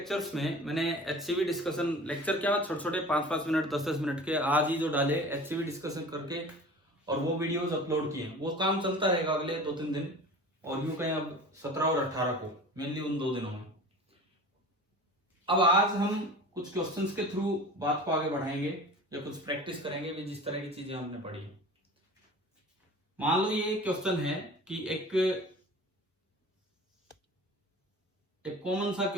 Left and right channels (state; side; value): normal; both; correlation 0.39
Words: में मैंने एचसीवी डिस्कशन लेक्चर क्या छोटे छोटे 5-5 मिनट 10-10 मिनट के आज ही जो डाले एचसीवी डिस्कशन करके और वो वीडियोस अपलोड किए। वो काम चलता रहेगा अगले 2-3 दिन और यूं कहें अब 17 और 18 को मेनली उन 2 दिनों में। अब आज हम कुछ क्वेश्चंस के थ्रू बात को आगे बढ़ाएंगे या कुछ प्रैक्टिस करेंगे भी जिस तरह की चीजें हमने पढ़ी है। मान लो ये क्वेश्चन है कि एक कॉमन सा